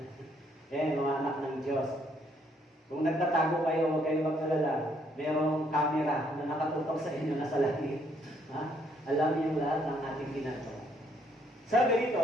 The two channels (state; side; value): normal; both; correlation 0.69